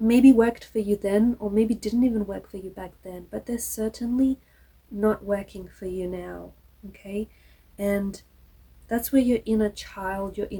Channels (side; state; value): both; identical; correlation 1.00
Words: worked for you then, or maybe didn't even work for you back then, but they're certainly not working for you now, okay? And that's where your inner child, your